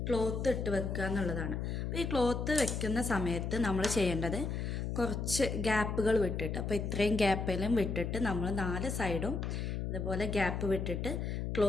ക്ലോത്ത് ഇട്ട് വെക്കുക എന്നുള്ളതാണ്. അപ്പോൾ ഈ ക്ലോത്ത് വെക്കുന്ന സമയത്ത് നമ്മൾ ചെയ്യേണ്ടത് കുറച്ച് ഗ്യാപ്പുകൾ വിട്ടിട്ട്, അപ്പോൾ ഇത്രയും ഗ്യാപ്പിലും വിട്ടിട്ട് നമ്മൾ 4 സൈഡും ഇതുപോലെ ഗ്യാപ്പ് വിട്ടിട്ട്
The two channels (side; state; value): left; noise; hum, 2 dB below the sound